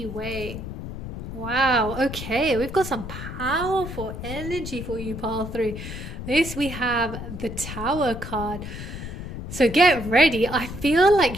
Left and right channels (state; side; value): noise; left; rumble, 8 dB below the sound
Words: way. Wow, okay, we've got some powerful energy for you, pile 3. This, we have the Tower card. So get ready. I feel